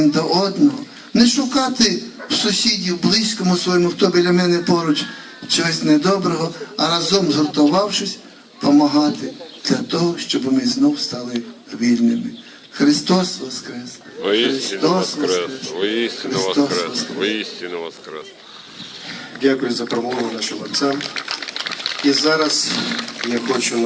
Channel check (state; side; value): identical; both; correlation 1.00